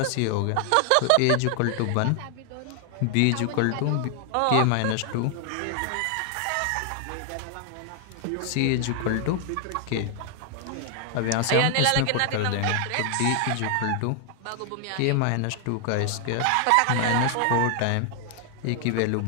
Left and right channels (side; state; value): both; different; correlation 0.00